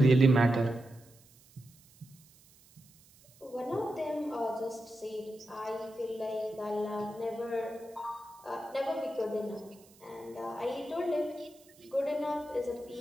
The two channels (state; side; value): noise; right; hiss, 26 dB below the sound